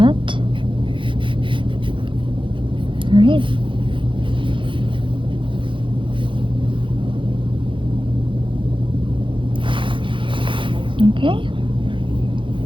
All right. Okay.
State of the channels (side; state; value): left; late; 0.24 ms